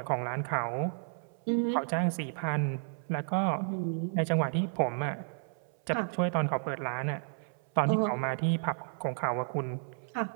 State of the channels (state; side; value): silent; left; 56 dB below the other